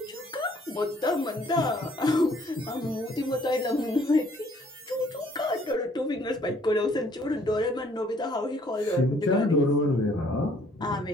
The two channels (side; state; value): both; normal; correlation 0.62